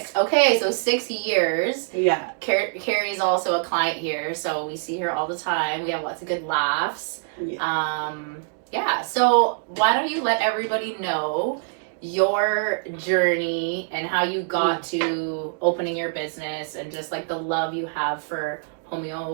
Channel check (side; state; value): left; silent; digital silence